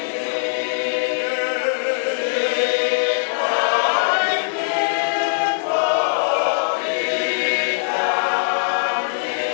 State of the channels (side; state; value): right; silent; 60 dB below the other